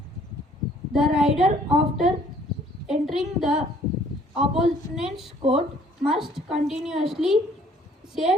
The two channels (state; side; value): normal; both; correlation 0.59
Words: The rider, after entering the opponent's court, must continuously